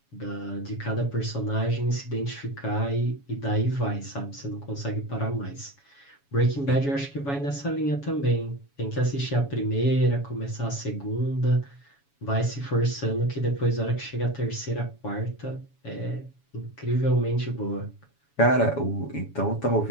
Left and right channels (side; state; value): right; late; 7.2 ms